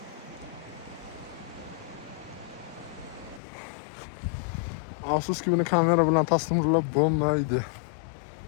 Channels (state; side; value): drops out; right; at 3.4 s